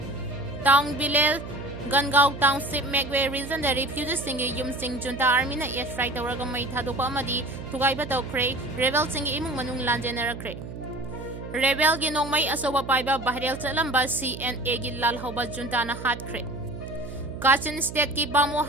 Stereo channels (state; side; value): noise; right; hum, 10 dB below the sound